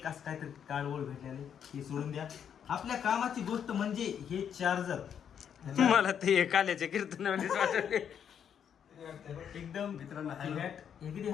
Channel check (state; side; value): quieter; right; 8.3 dB